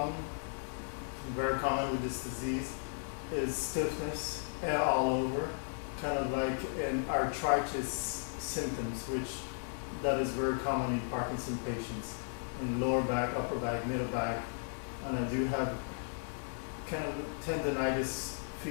very common with this disease, is stiffness and all over, kind of like an arthritis symptoms, which that is very common in Parkinson patients, in the lower back, upper back, middle back, and I do have kind of tendonitis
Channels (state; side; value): silent; right; digital silence